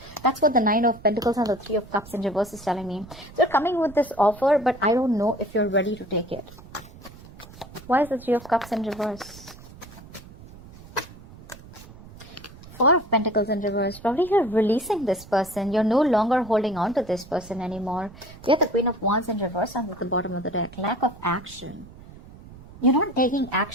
That's what the Nine of Pentacles and the Three of Cups in reverse is telling me. So you're coming with this offer, but I don't know if you're ready to take it. Why is the Three of Cups in reverse? Four of Pentacles in reverse. Probably you're releasing this person. You're no longer holding on to this person anymore. We have the Queen of Wands in reverse and at the bottom of the deck. Lack of action. You're not taking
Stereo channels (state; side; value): noise; right; rumble, 19 dB below the sound